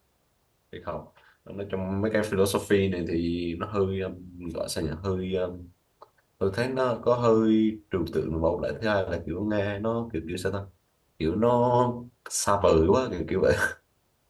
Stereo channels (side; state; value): both; identical; correlation 1.00